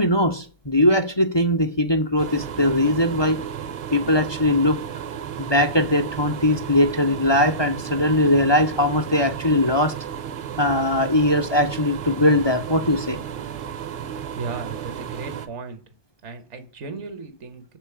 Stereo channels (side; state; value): right; late; 1.2 ms